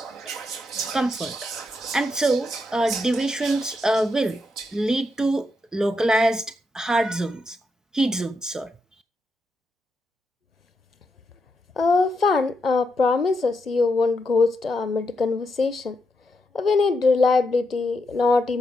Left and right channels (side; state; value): both; normal; correlation 0.82